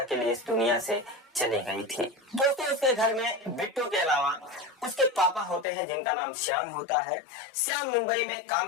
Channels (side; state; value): right; drops out; at 5.7 s